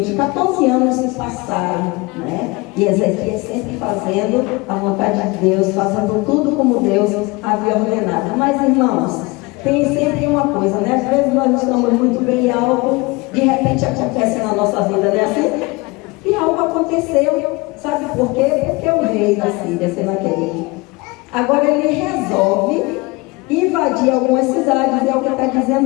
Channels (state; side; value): quieter; right; 24.7 dB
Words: 14 anos se passaram, né? E Ezequias sempre fazendo a vontade de Deus, fazendo tudo como Deus havia ordenado. Mas, irmãos, tem sempre uma coisa, né? Às vezes nós estamos muito bem e algo de repente acontece na nossa vida, né? Assim, e algo aconteceu, sabe por quê? Porque o rei da Síria, Senaqueribe, agora ele resolve invadir algumas cidades. É o que está